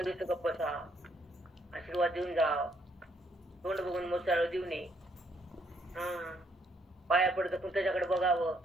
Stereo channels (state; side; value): normal; both; correlation 0.71